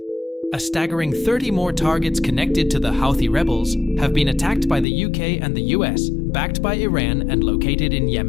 A staggering 30 more targets connected to the Houthi rebels have been attacked by the UK and the US, backed by Iran and located in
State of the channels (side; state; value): right; drops out; at 4.9 s